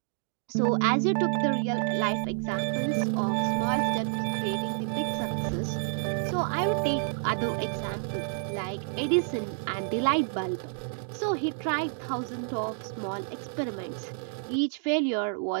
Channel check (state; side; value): silent; left; 59 dB below the other